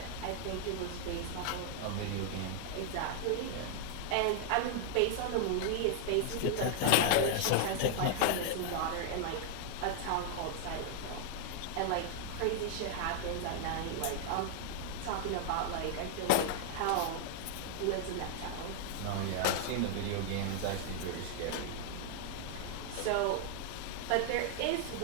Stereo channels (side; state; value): both; different; correlation 0.00